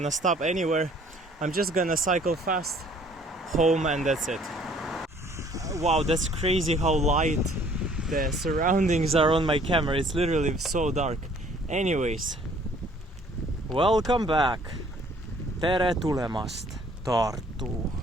stop anywhere. I'm just gonna cycle fast home, and that's it. Wow, that's crazy how light the surroundings are on my camera. It's literally so dark. Anyways, welcome back. Tere tulemast, Tartu.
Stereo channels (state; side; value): normal; both; correlation 0.58